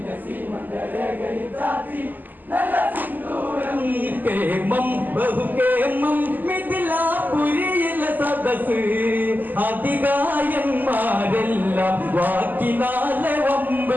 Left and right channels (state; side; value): late; left; 0.086 ms